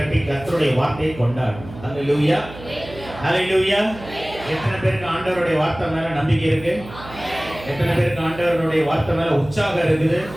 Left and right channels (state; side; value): noise; right; hum, 16 dB below the sound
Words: கர்த்தருடைய வார்த்தையை கொண்டாடணும். ஹல்லேலூயா. ஹல்லேலூயா. எத்தனை பேருக்கு ஆண்டவருடைய வார்த்தை மேல நம்பிக்கை இருக்கு? எத்தனை பேருக்கு ஆண்டவருடைய வார்த்தை மேல உற்சாகம் இருக்குது?